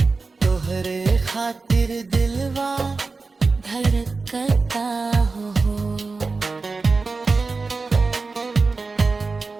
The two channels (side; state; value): left; quieter; 4.1 dB